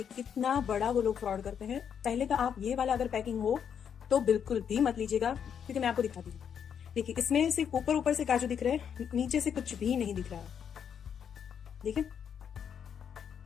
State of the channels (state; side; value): quieter; right; 7.9 dB